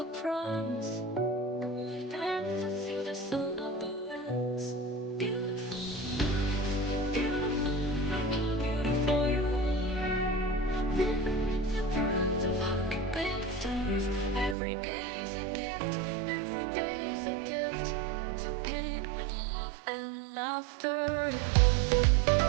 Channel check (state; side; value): drops out; left; at 14.6 s